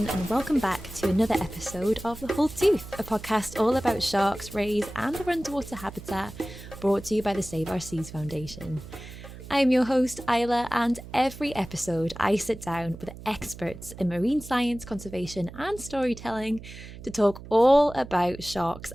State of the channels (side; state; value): right; noise; hum, 14 dB below the sound